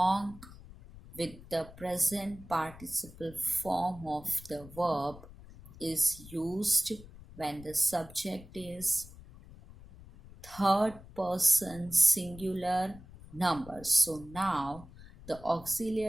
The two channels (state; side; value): noise; left; rumble, 18 dB below the sound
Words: with the present participle form of the verb is used when the subject is third person singular number. So now the